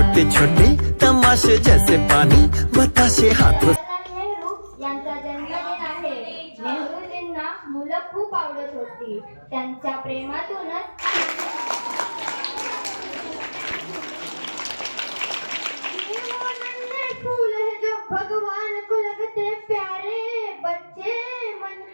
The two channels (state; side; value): inverted; both; correlation -1.00